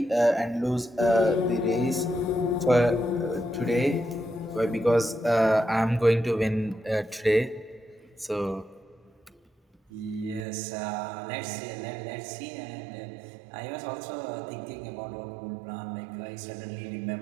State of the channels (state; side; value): drops out; left; at 10.5 s